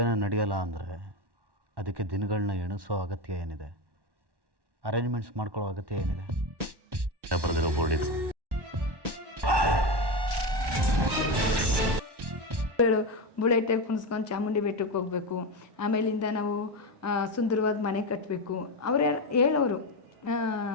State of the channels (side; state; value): left; late; 1.1 ms